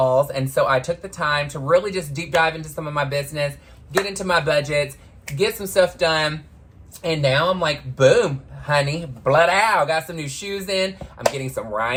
And so I took the time to really just deep dive into some of my business, get into my budgets, get some stuff done. And now I'm like, boom, honey, blood out. Got some new shoes in. I'm getting some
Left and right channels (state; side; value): identical; both; correlation 1.00